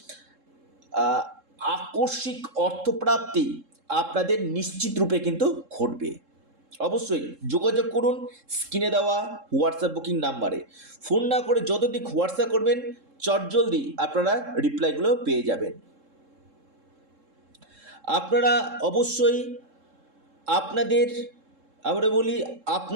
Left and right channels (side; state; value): left; late; 3.7 ms